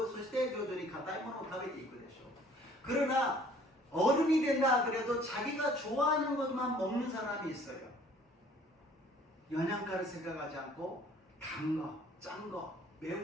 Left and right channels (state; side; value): normal; both; correlation 0.55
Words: そして徐々に硬いものを食べていくでしょう. 그러나 어른이 된다 그래도 자기가 좋아하는 것만 먹는 사람이 있어요. 영양가를 생각하지 않고 단 거, 짠 거,